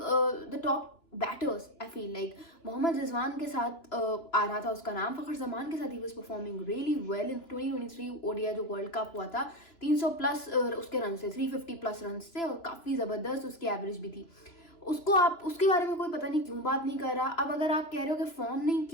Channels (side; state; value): right; late; 2.9 ms